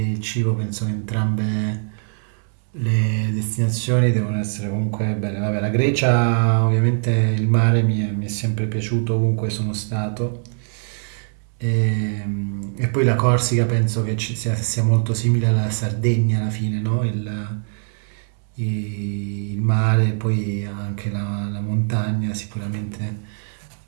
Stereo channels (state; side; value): silent; left; 64 dB below the other